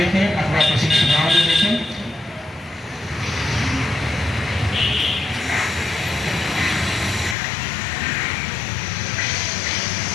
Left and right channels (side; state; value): right; drops out; at 7.4 s